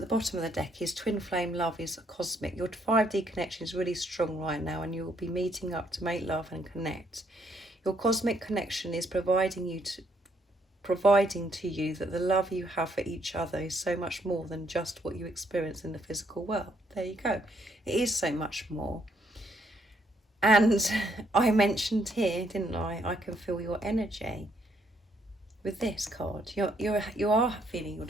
the bottom of the deck is Twin Flame Love is Cosmic. Your 5D connection is really strong right now, and you will be meeting up to make love and connect. Your cosmic connection is providing to you that the love you have for each other is so much more than just what you experience in the physical world. There you go. It is so much more. And I mentioned here, didn't I can feel your energy. With this card, you are feeling your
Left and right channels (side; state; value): both; normal; correlation 0.71